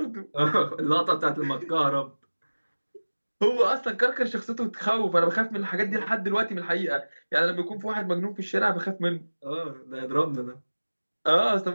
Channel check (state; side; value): inverted; both; correlation -1.00